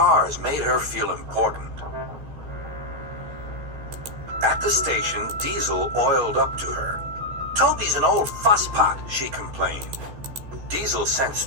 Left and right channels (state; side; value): late; left; 14 ms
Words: made her feel important. At the station, Diesel oiled up to her. Toby's an old fusspot, she complained. Diesel